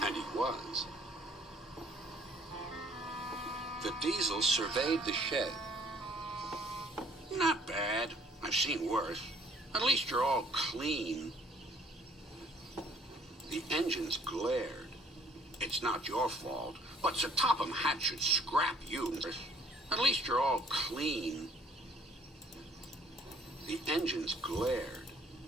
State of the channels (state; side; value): normal; both; correlation 0.58